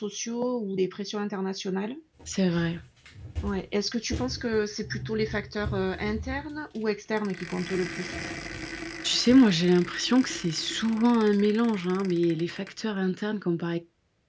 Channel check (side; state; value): both; identical; correlation 1.00